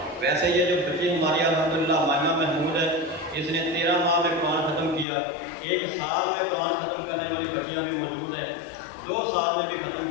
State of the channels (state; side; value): drops out; right; at 5.1 s